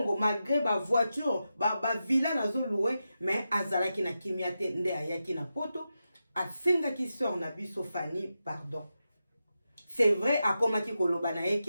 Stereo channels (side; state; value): both; inverted; correlation -0.89